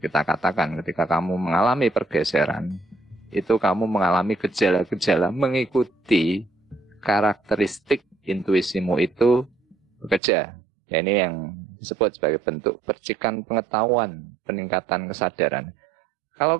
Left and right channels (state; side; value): drops out; left; at 10.2 s